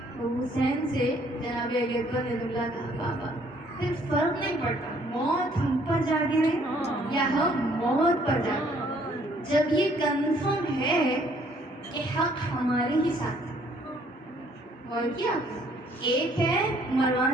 تو حسین سے جناب علی اکبر نے جملہ کہا, بابا پھر فرق نہیں پڑتا موت ہم پر جا گرے یا ہم موت پر جا گرے, جب یہ کنفرم ہے کہ حق ہمارے ہی ساتھ ہے. اور کیا ایک ہے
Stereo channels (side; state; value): both; normal; correlation 0.63